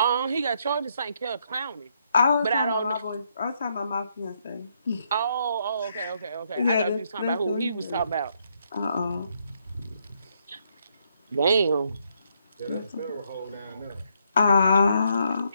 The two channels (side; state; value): both; inverted; correlation -0.74